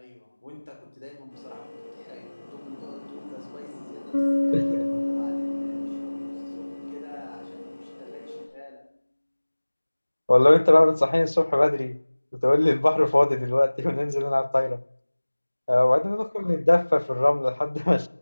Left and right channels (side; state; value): both; inverted; correlation -1.00